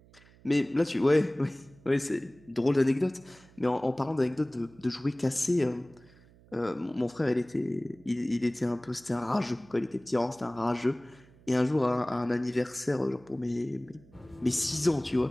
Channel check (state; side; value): noise; right; hum, 26 dB below the sound